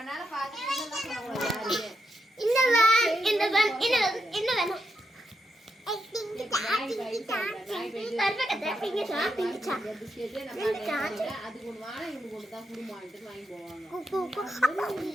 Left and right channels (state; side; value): normal; both; correlation 0.83